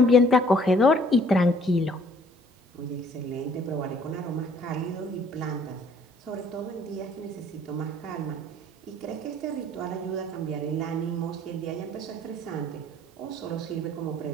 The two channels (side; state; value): both; normal; correlation 0.58